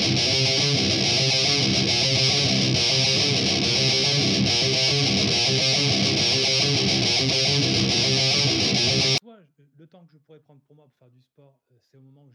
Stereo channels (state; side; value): identical; both; correlation 1.00